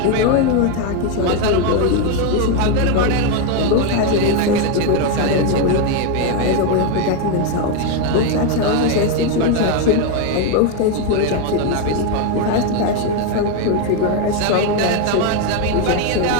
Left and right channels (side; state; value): both; different; correlation 0.02